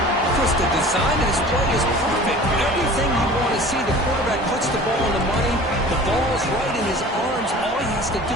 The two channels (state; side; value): normal; both; correlation 0.43